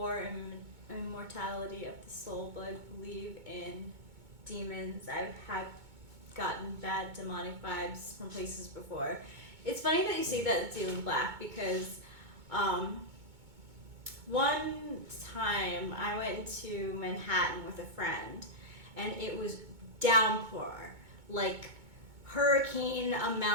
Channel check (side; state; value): left; late; 2.2 ms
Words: immortality of the soul, but I believe in demons. I've gotten bad demonic vibes from places before. It's funny that you say that it's Alien Black because one time I went to Manhattan with a friend and it was downpour, hurricane